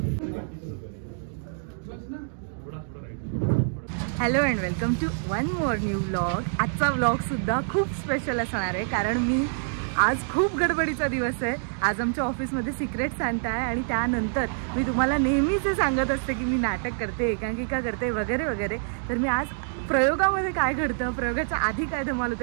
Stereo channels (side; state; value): left; silent; digital silence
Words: Hello and welcome to one more new vlog. आजचा व्लॉग सुद्धा खूप स्पेशल असणार आहे, कारण मी आज खूप गडबडीचा दिवस आहे. आज आमच्या ऑफिसमध्ये सिक्रेट सांता आहे आणि त्यानंतर मी तुम्हाला नेहमीच सांगत असते की मी नाटक करते, एकांकिका करते वगैरे वगैरे. तर मी आज प्रयोगामध्ये काय घडतं, प्रयोगाच्या आधी काय धमाल